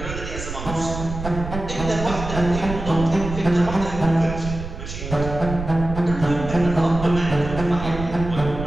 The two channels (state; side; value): noise; right; rumble, 8 dB below the sound